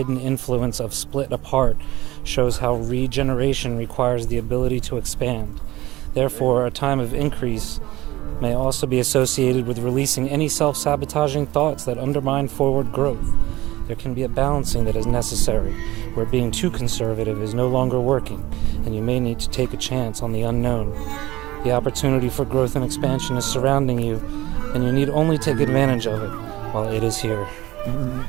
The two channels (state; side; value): quieter; left; 17.8 dB